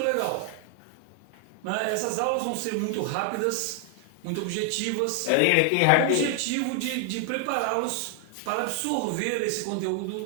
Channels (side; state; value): both; different; correlation 0.00